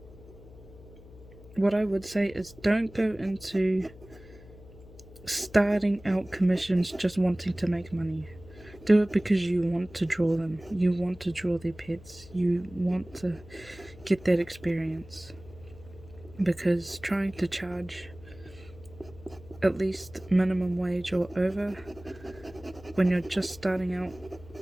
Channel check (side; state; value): left; noise; hum, 20 dB below the sound